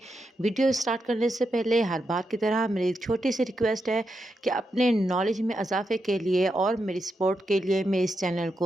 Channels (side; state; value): both; normal; correlation 0.85